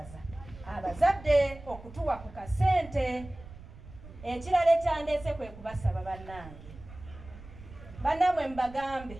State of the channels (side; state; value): right; noise; rumble, 17 dB below the sound